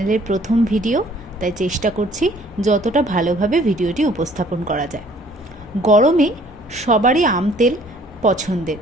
প্রথম ভিডিও, তাই চেষ্টা করছি যতটা ভালোভাবে ভিডিওটি উপস্থাপন করা যায়। গরমে সবারই আম তেল পছন্দের।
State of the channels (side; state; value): both; normal; correlation 0.57